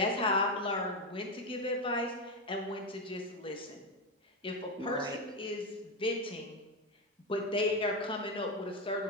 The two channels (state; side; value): normal; both; correlation 0.10